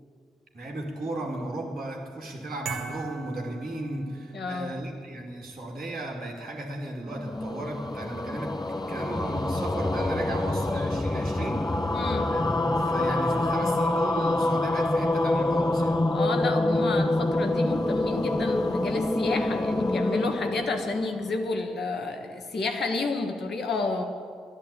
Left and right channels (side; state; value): both; normal; correlation 0.86